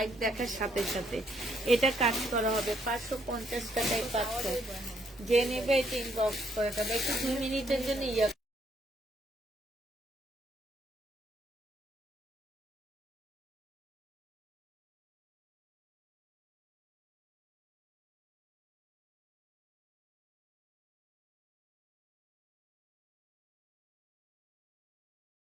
দেখার সাথে সাথে। এটা কাজ করা হবে 550 টাকায় পাচ্ছ। যে নেবে এটা ইনবক্স করে দেবে। একটু 2 মিনিটের জন্য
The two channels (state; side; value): normal; both; correlation 0.71